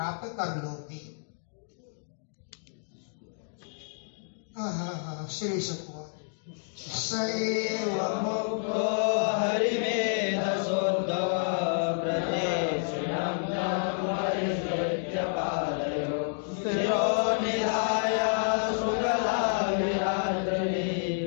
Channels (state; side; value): silent; right; digital silence